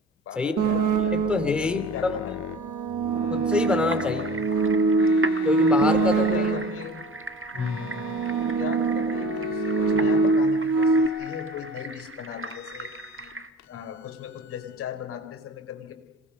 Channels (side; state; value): both; normal; correlation 0.41